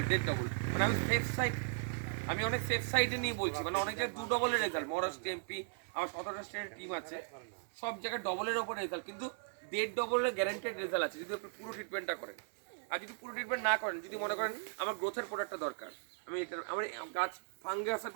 ডেট ডবল। মানে আমি অনেক সেফ সাইডে নিয়ে বলছি, মানে অনেক জায়গায় 2 ডবলের রেজাল্ট, মহারাষ্ট্র এমপি আমার 17টা স্টেটের টিম আছে, সব জায়গায় ডবলের ওপর রেজাল্ট, কিন্তু 1.5 ডবলের গ্যারেন্টেড রেজাল্ট আছে যদি আপনি পুরো ট্রিটমেন্টটা করেন। আর যদি পুরো ট্রিটমেন্ট না করেন, যদি মনে করেন আমার গ্রোথের প্রোডাক্টটা দরকার, আমার গাছ ফাঙ্গাসের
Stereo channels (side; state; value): left; silent; digital silence